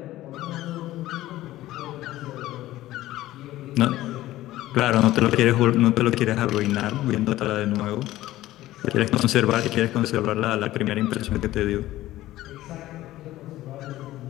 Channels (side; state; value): right; quieter; 15.6 dB